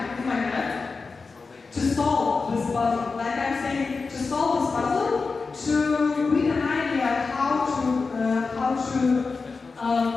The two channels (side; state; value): right; quieter; 4.4 dB